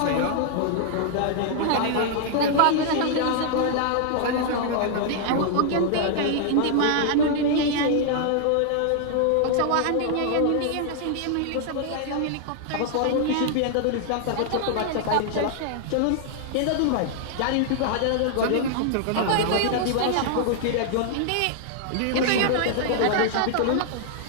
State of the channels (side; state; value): both; different; correlation -0.01